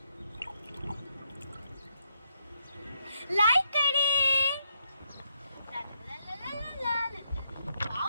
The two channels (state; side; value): inverted; both; correlation -0.77